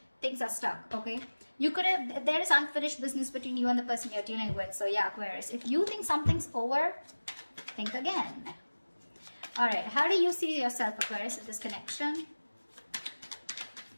things are stuck, okay? You could have, there is unfinished business between you and the person you're dealing with. So yeah, Aquarius, if you think something's over, think again. All right, how do you see yourself, Aquarius, in this connection?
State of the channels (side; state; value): both; inverted; correlation -1.00